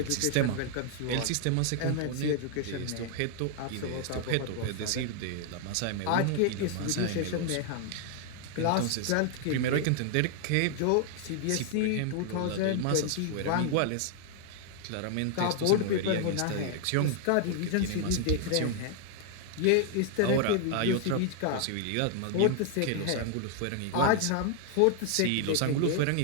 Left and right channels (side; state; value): both; different; correlation 0.00